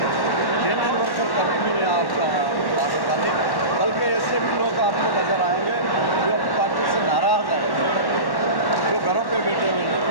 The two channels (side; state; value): right; late; 1.1 ms